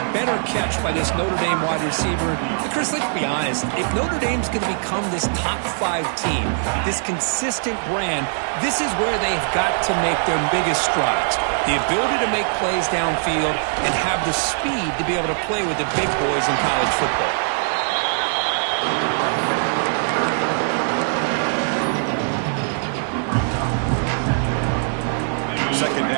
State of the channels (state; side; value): silent; left; 65 dB below the other